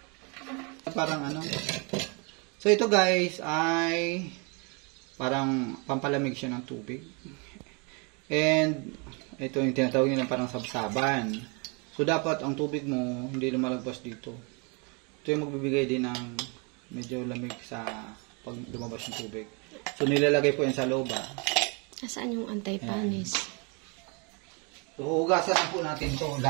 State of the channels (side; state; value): left; quieter; 32.9 dB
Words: Parang ano. So ito guys ay parang pampalamig siya ng tubig. And ito yung tinatawag nila parang sabsaban. So dapat ang tubig mo hindi lumalagpas dito. Ito yung magbibigay din ng medyo lamig sa pag lumabas ng tubig. So nilalagay po yan sa loob. Nasaan yung anti-panis? So, hugasan na po natin to.